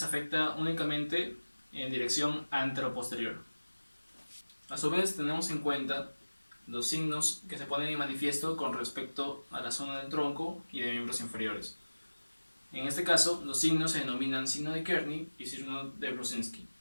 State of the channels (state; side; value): inverted; both; correlation -1.00